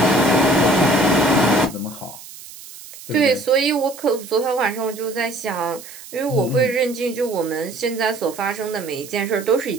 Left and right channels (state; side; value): noise; right; hiss, 16 dB below the sound